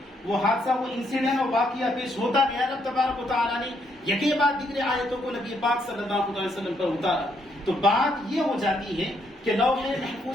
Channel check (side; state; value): both; normal; correlation 0.74